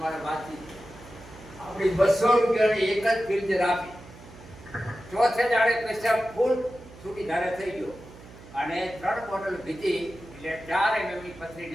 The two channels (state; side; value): noise; right; hum, 19 dB below the sound